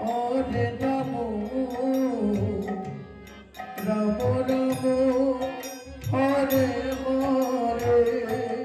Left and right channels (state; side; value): identical; both; correlation 1.00